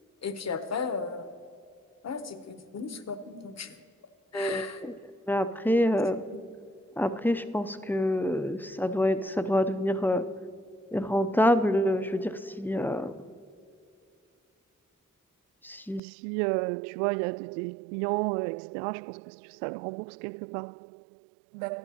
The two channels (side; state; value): left; drops out; at 16.0 s